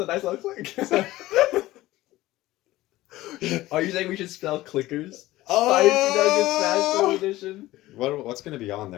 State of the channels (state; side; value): quieter; right; 17.1 dB